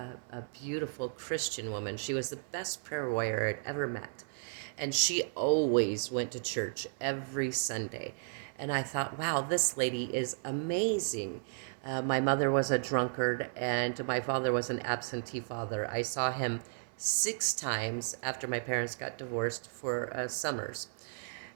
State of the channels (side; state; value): left; silent; digital silence